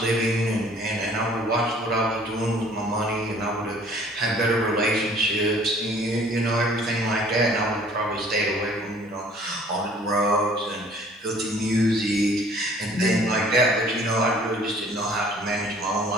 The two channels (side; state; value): both; normal; correlation 0.54